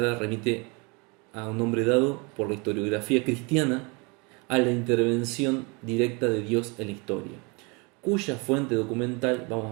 remite a un nombre dado por la historiografía cristiana a la intervención directa de Dios en la historia, cuya fuente documental, vamos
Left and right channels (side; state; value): left; quieter; 29.8 dB